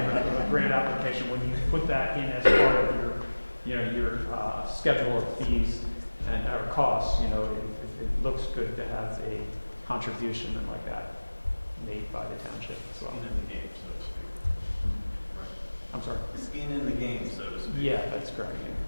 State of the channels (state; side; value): inverted; both; correlation -1.00